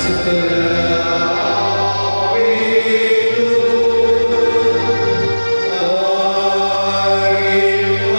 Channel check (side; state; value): both; inverted; correlation -1.00